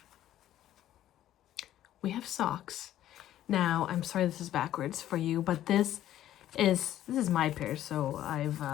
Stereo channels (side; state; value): right; quieter; 12.6 dB